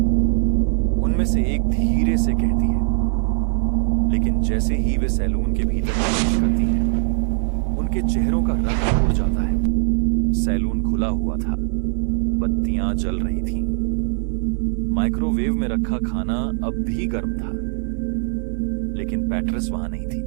उनमें से एक धीरे से कहती है, लेकिन जैसे ही वे सैलून के भीतर प्रवेश करती हैं, उनके चेहरों का रंग उड़ जाता है। सैलून खुला हुआ था, बत्तियां जल रही थीं। माइक्रोवेव में रखा खाना अब भी गर्म था, लेकिन पैट्रिस वहां नहीं थी।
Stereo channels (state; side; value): silent; left; 65 dB below the other